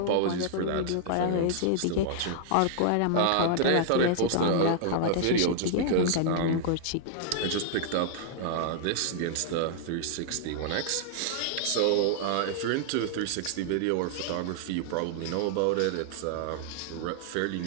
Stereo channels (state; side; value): different; both; correlation -0.01